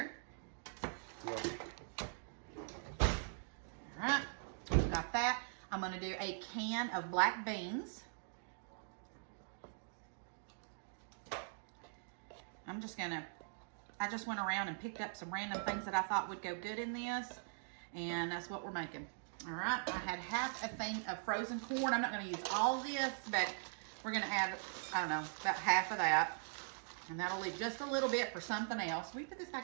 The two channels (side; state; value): left; silent; digital silence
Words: All right, got that. I'm gonna do a can of black beans. I just went around and picked up some random things that I thought would go good in this, and that's what we're making. All right, I had half a thing of frozen corn. I'm not gonna use all this, but we're gonna add, I don't know, about half of that. And that'll leave just a little bit for something else. Will you put this